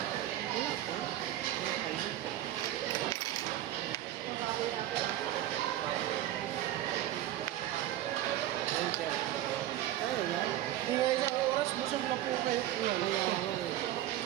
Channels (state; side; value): quieter; left; 13.4 dB